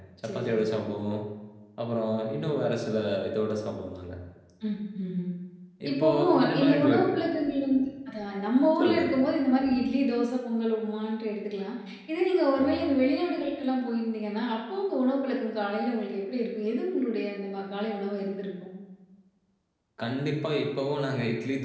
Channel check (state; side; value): identical; both; correlation 1.00